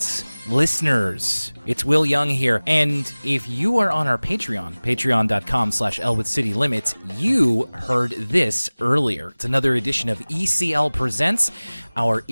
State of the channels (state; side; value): inverted; both; correlation -1.00